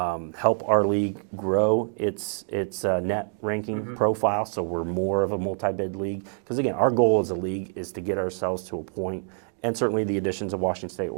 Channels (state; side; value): silent; left; 57 dB below the other